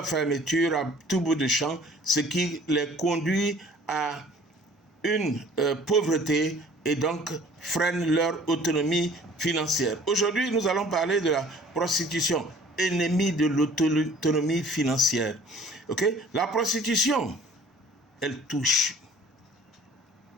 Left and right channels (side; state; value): both; normal; correlation 0.51